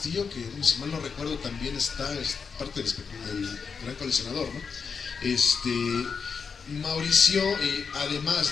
que si mal no recuerdo también es parte del gran coleccionador, ¿no? Mauricio,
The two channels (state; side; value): quieter; right; 5.7 dB